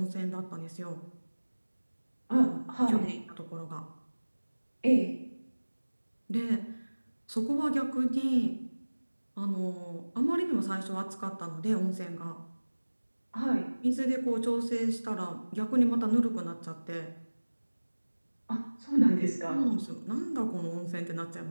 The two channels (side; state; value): both; inverted; correlation -1.00